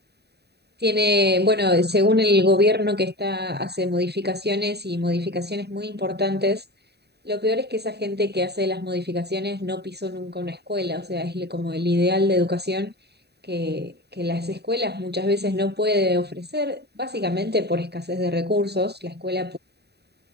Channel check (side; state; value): left; late; 0.48 ms